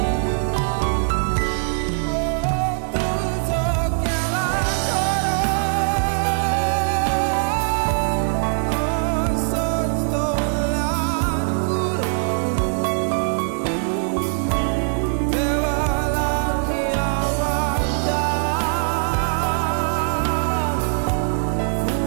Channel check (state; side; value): silent; left; 56 dB below the other